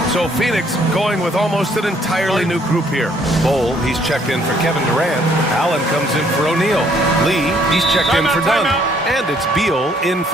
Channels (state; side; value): normal; both; correlation 0.65